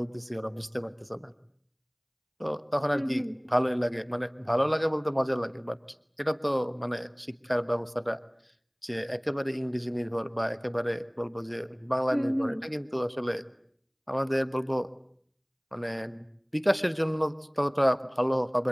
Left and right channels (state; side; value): identical; both; correlation 1.00